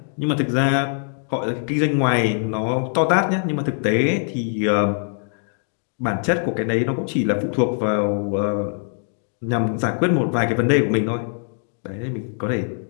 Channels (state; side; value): silent; right; 59 dB below the other